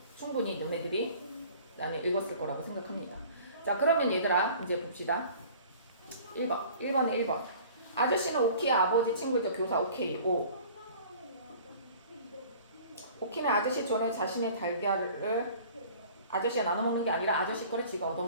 충분히 너네들이 나는 읽었을 거라고 생각합니다. 자, 그러면 얘들아 이제 봅시다. 1번에 1번. 아저씨는 오키의 아버지 친구이죠. 교사 오케이. 오. 오키는 아저씨 전에 자신의 달걀을 아저씨가 나눠 먹는 게 아니라 아저씨 거를 지가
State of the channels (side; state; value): both; inverted; correlation -0.47